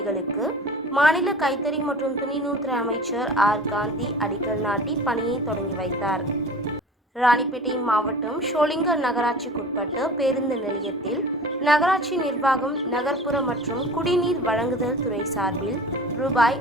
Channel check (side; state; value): both; normal; correlation 0.39